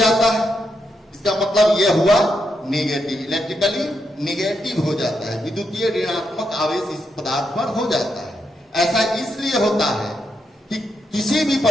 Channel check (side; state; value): both; normal; correlation 0.82